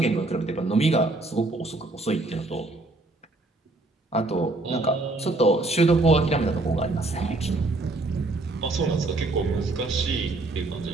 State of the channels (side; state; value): left; quieter; 3.0 dB